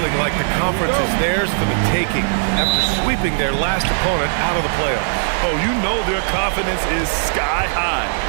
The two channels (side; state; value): left; silent; digital silence